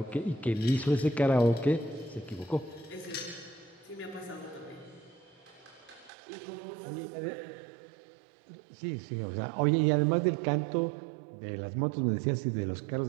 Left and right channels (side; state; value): left; drops out; at 6.1 s